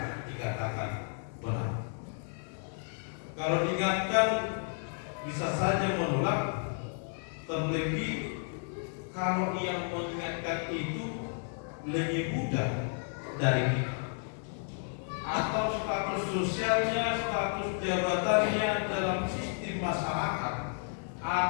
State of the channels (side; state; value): right; silent; 56 dB below the other